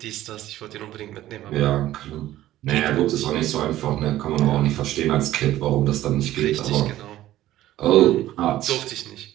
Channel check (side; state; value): left; quieter; 14.3 dB